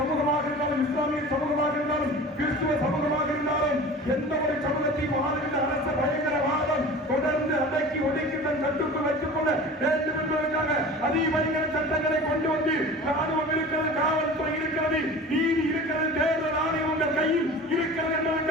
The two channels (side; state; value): both; normal; correlation 0.38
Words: இருந்தாலும், இஸ்லாமிய சமூகமாக இருந்தாலும், கிறிஸ்துவ சமூகமாக இருந்தாலும், எந்த ஒரு சமூகத்தையும் ஆளுகின்ற அரச பயங்கரவாதம் தொடர்ந்து அடக்கி ஒடுக்கி தன் கட்டுக்குள் வைத்துக் கொள்ள வேண்டும் என்பதற்காக அதிபயங்கர சட்டங்களை கொண்டு வந்து ராணுவம் இருக்கிறது, காவல்துறை இருக்கிறது, நீதி இருக்கிறது, தேர்தல் ஆணையம் உங்கள் கையில் இருக்கிறது